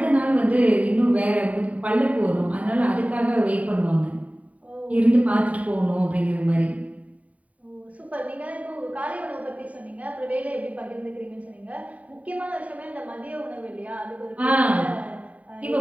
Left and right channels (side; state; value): left; late; 0.068 ms